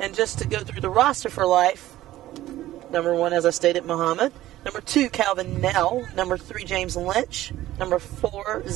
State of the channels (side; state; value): left; quieter; 14.9 dB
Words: just to go through the roster for Life, number 1, as I stated, Mohammed. Number 2, Calvin Nell. Number 3, James Lynch. Number 4,